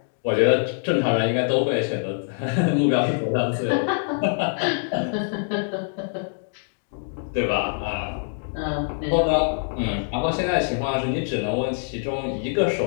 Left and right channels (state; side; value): silent; right; digital silence